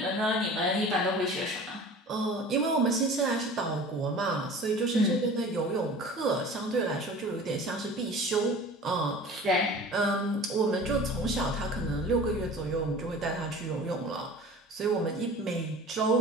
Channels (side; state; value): both; normal; correlation 0.41